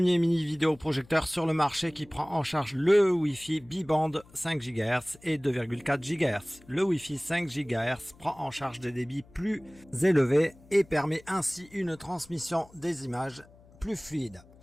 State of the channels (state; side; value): noise; left; hum, 25 dB below the sound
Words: mini vidéoprojecteur sur le marché qui prend en charge le Wi-Fi bi-band 5 GHz et 2,4 GHz. Le Wi-Fi 5 GHz prend en charge des débits plus élevés et permet ainsi une transmission des images plus fluide.